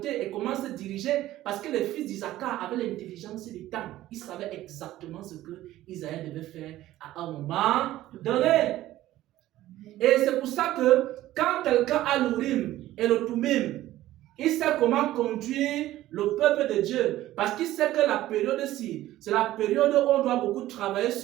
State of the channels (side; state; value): left; quieter; 14.9 dB